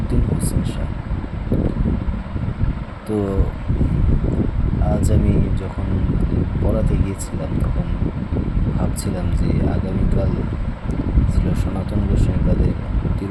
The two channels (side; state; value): both; identical; correlation 1.00